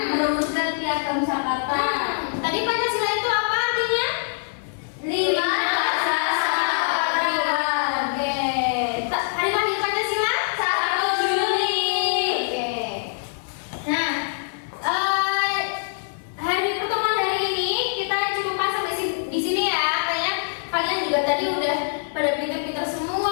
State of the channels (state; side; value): silent; right; digital silence